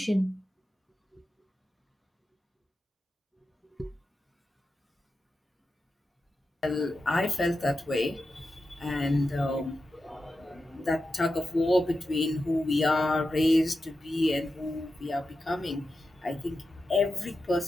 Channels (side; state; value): both; normal; correlation 0.91